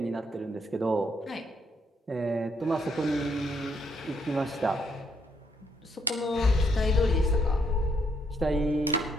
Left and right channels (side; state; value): both; normal; correlation 0.73